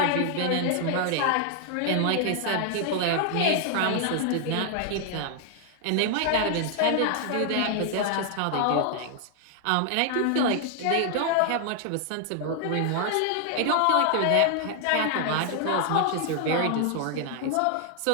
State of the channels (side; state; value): both; different; correlation 0.00